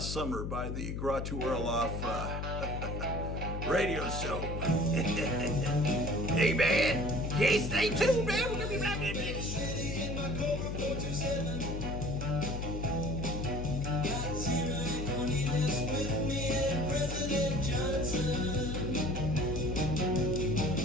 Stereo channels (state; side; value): noise; left; hum, 3 dB below the sound